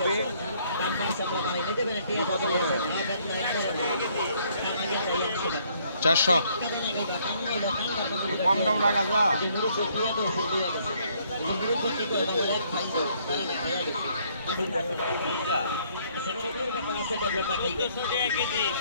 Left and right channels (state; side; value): inverted; both; correlation -0.66